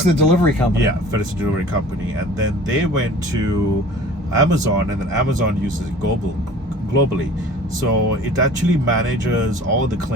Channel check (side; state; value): both; normal; correlation 0.45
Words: the delivery company. Yeah, FedEx the delivery company, and then they went to Amazon, and then Amazon uses it globally. So it actually manages all the